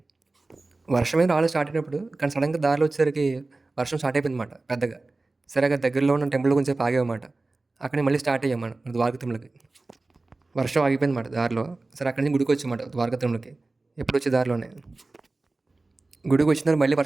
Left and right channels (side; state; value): left; quieter; 3.3 dB